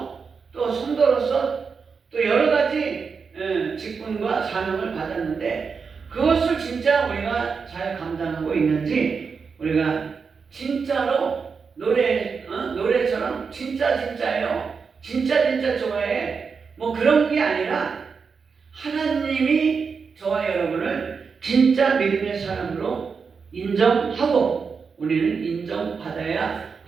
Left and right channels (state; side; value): quieter; left; 5.5 dB